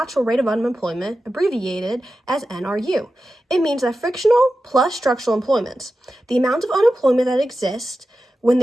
rate of unemployment, abbreviated as NRU. It means that frictional plus structural employment, the amount of unemployment that exists when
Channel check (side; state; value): both; normal; correlation 0.92